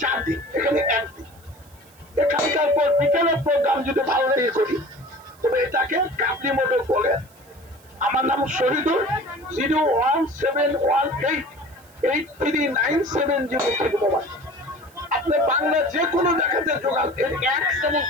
4 দিন, এখানে 1 দিন। এখানকার পর বিকেলের প্রোগ্রাম যদি ভালো লেগে করি তবে এটাকে কাবলি মোটর বলে। আমার নাম শহীদুল। 01718839703 মোবাইল। আপনি বাংলা যে কোনো জায়গাতে যোগান, এর 1 চামচ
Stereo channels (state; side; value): noise; right; hiss, 28 dB below the sound